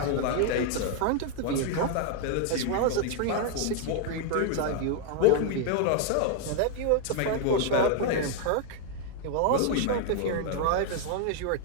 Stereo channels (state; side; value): different; both; correlation 0.00